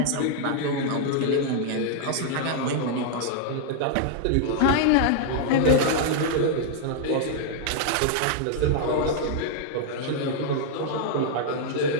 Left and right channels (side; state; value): both; different; correlation -0.01